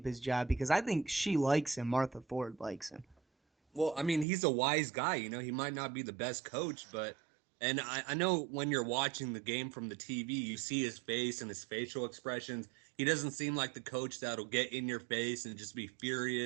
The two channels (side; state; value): left; drops out; at 4.2 s